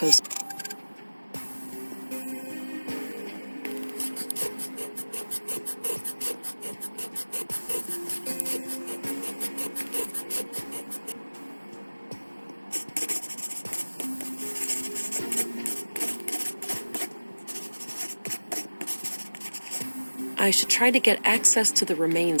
I should try to get access to the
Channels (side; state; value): both; inverted; correlation -1.00